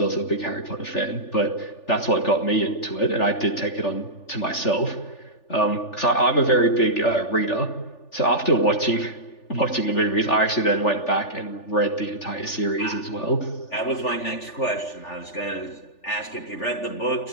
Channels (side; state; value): right; late; 3.4 ms